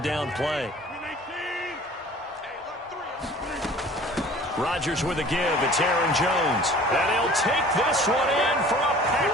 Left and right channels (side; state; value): both; normal; correlation 0.47